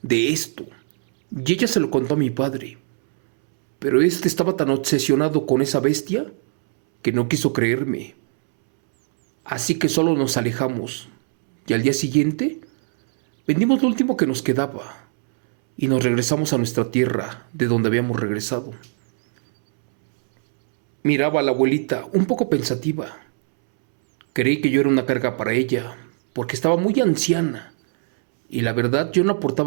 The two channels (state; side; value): silent; left; 65 dB below the other